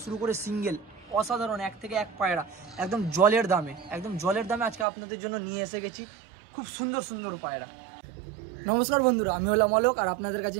শুরু করে সিঙ্গেল অসাধারণ এক থেকে এক পায়রা একদম জলের দামে, আজকে আপনাদের জন্য নিয়ে এসে গেছি খুব সুন্দর সুন্দর পায়রা। নমস্কার বন্ধুরা, আমি হলাম অলোক আর আপনাদের কাছে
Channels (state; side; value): drops out; left; at 4.9 s